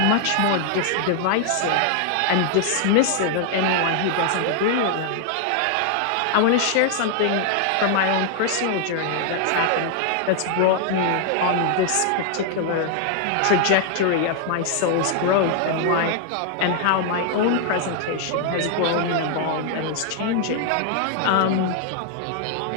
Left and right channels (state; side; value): different; both; correlation 0.00